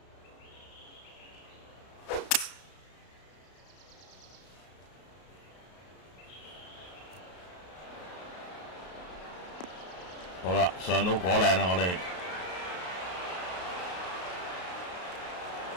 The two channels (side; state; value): right; late; 32 ms